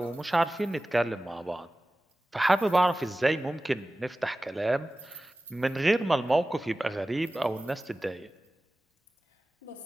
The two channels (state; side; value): normal; both; correlation 0.96